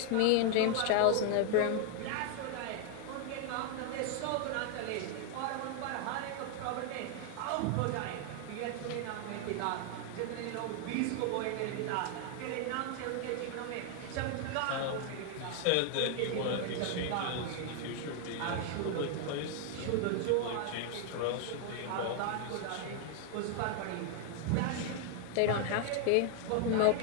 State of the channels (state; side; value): different; both; correlation 0.00